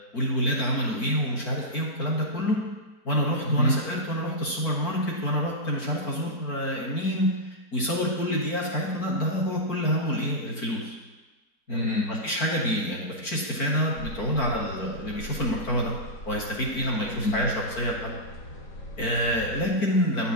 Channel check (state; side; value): late; right; 4.5 ms